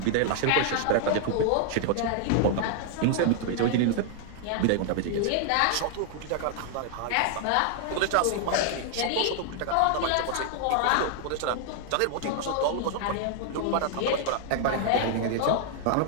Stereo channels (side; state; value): both; different; correlation 0.00